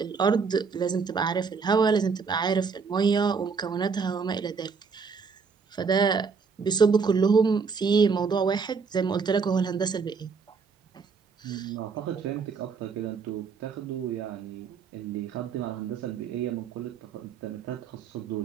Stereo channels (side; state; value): left; quieter; 5.3 dB